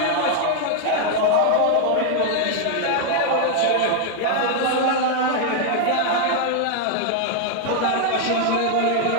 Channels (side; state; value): both; different; correlation 0.00